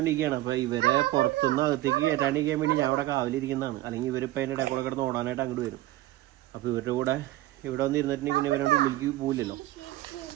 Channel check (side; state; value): left; quieter; 16.5 dB